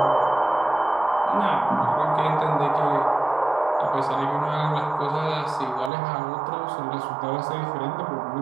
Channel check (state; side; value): drops out; left; at 5.9 s